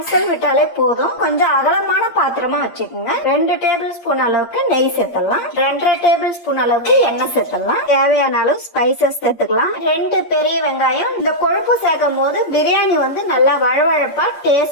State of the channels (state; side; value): late; right; 8.6 ms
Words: விட்டாலே போதும். கொஞ்சம் அகலமான பாத்திரமா வச்சுக்கோங்க. 2 டேபிள் ஸ்பூன் அளவுக்கு நெய் சேர்த்தலாம். 2.5 டேபிள் ஸ்பூன் அளவுக்கு எண்ணெய் சேர்த்தலாம். தேவையான அளவு ஸ்பைசஸ் சேர்த்துக்கலாம். 2 பெரிய வெங்காயம். இந்த கொழுப்பு சேர்க்கும் போது பிரியாணி வந்து நல்லா வழவழப்பா